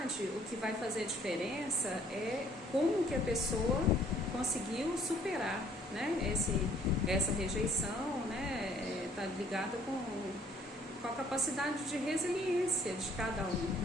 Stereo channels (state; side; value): normal; both; correlation 0.61